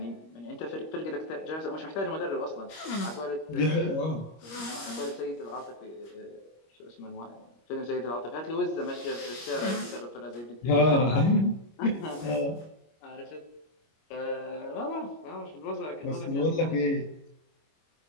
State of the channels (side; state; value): right; late; 25 ms